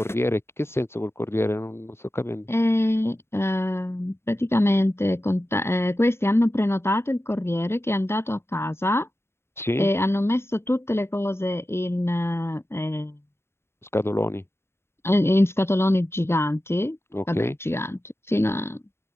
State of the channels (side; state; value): right; late; 0.12 ms